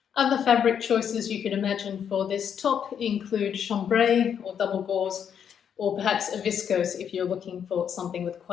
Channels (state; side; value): quieter; right; 8.2 dB